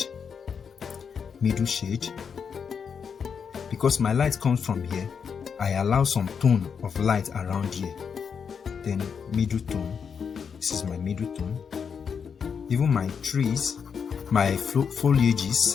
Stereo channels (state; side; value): quieter; right; 6.6 dB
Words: because my light comes from here, I allow some tone of light around here. Then middle tone. This is my middle tone. Even my trees, my